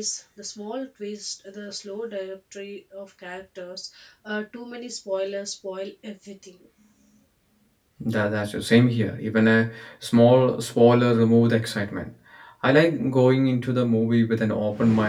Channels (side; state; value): both; identical; correlation 1.00